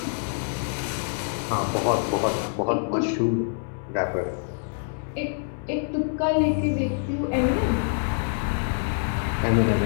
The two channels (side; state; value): right; silent; 61 dB below the other